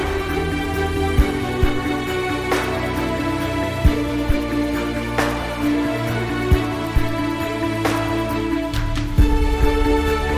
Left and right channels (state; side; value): identical; both; correlation 1.00